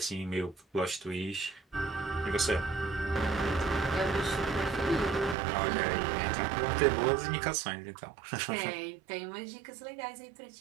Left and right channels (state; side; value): drops out; left; at 5.4 s